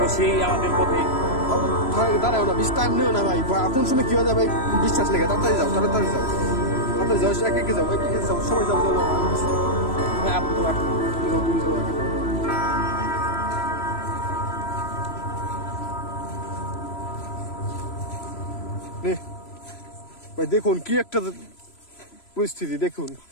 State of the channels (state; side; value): late; right; 3.0 ms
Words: সেই আমাদের পথে দাঁড়াও না, বেশি টাইম নিও না ভাই, কোন সময় কি হয়ে যায় ভাই বিশ্বাস লেগে, তাড়াতাড়ি যাও একে যাও সবাই যাও তুমি যাও ভাই। দেখুন কি একটা পরিস্থিতি, দেখুন